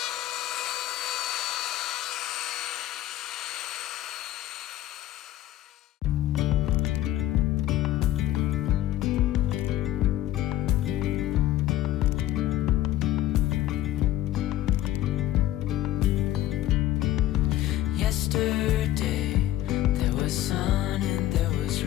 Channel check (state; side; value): quieter; right; 13.9 dB